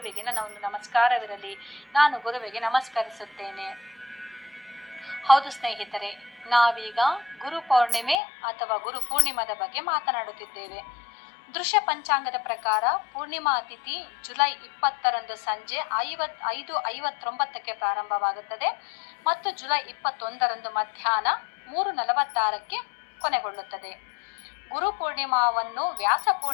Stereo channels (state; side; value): drops out; right; at 8.2 s